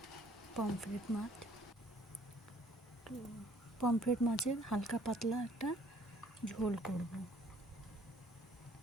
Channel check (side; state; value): both; normal; correlation 0.59